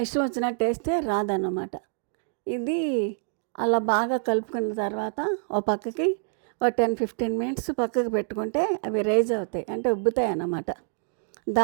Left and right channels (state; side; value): silent; left; 61 dB below the other